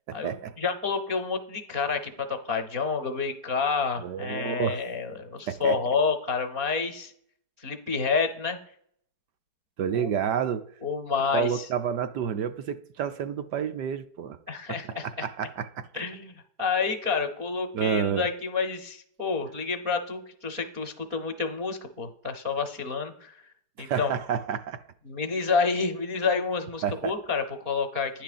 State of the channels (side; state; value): left; late; 4.3 ms